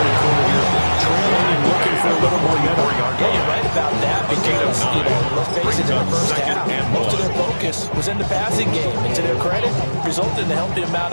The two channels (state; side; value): inverted; both; correlation -1.00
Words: quarter here. Trailing and looking for a little more yardage. Yeah, you're right about that because, let's face it, in the first half, most of their focus was in the passing game. And to their credit, resulted in a healthy